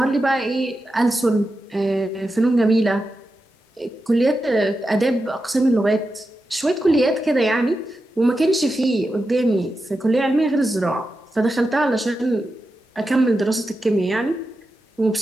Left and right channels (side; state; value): both; normal; correlation 0.90